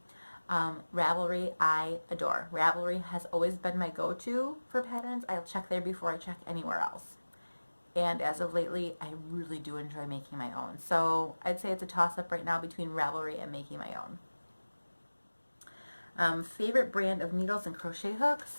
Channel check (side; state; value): both; inverted; correlation -1.00